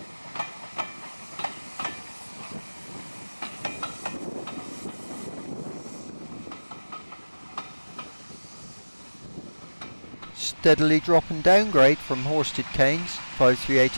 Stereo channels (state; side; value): inverted; both; correlation -1.00